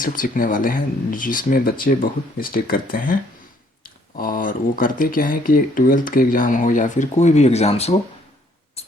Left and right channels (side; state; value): both; normal; correlation 0.65